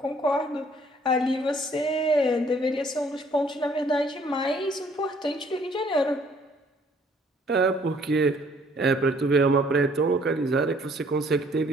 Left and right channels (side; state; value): both; normal; correlation 0.61